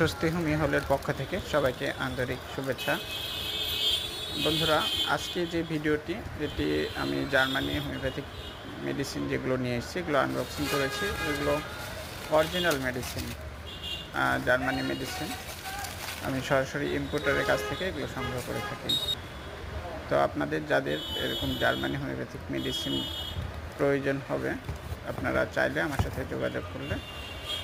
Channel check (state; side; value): identical; both; correlation 1.00